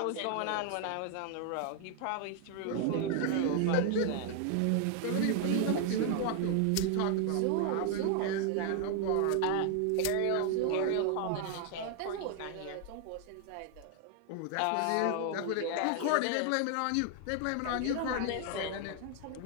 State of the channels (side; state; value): both; different; correlation 0.00